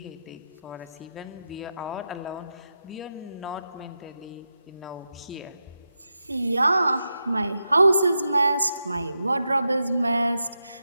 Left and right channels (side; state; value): both; inverted; correlation -0.88